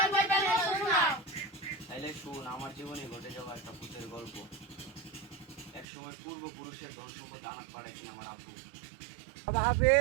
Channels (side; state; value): left; drops out; at 5.9 s